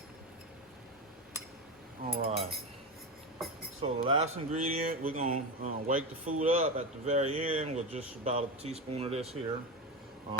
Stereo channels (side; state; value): both; normal; correlation 0.19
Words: All right. So the last ingredient, we're gonna wake the food up at the very end with just about a teaspoon of this here.